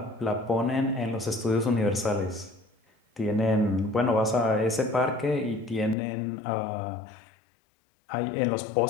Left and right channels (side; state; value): right; drops out; at 6.0 s